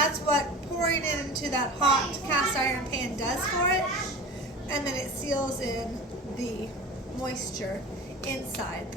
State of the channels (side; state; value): both; normal; correlation 0.35